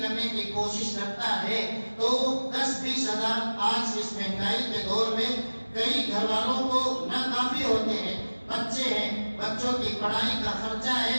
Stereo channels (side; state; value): both; inverted; correlation -1.00